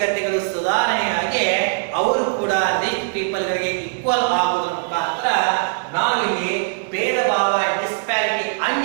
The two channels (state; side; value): silent; left; digital silence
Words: ಸುಧಾರಣೆಯಾಗಿ ಅವರು ಕೂಡ ರಿಚ್ ಪೀಪಲ್ ಗಳಿಗೆ ಈಕ್ವಲ್ ಆಗುವುದರ ಮುಖಾಂತರ ನಾವಿಲ್ಲಿ ಭೇದ ಭಾವ, ಡಿಸ್ಪ್ಯಾರಿಟಿ,